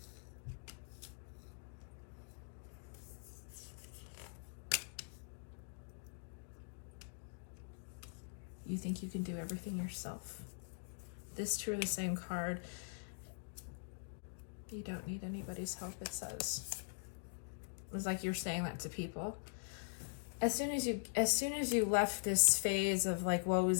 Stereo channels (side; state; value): right; silent; digital silence